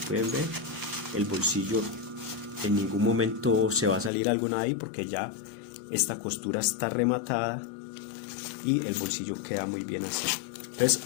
ver, el bolsillo en ningún momento se va a salir algo de ahí porque ya esta costura está rematada y el bolsillo queda muy bien así. Entonces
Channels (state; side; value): drops out; right; at 4.1 s